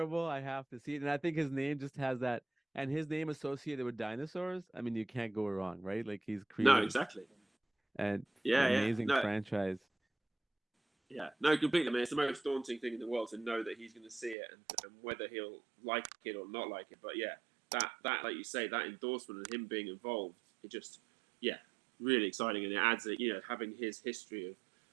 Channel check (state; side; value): drops out; left; at 14.4 s